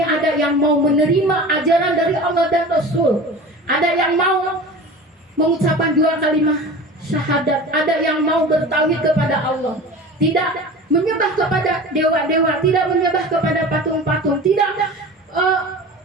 ada yang mau menerima ajaran dari Allah dan Rasul. Ada yang mau mengucapkan 2 kalimat syahadat. Ada yang mau bertauhid kepada Allah. Tidak menyembah kepada dewa-dewa, tidak menyembah kepada patung-patung, tidak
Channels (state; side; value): normal; both; correlation 0.36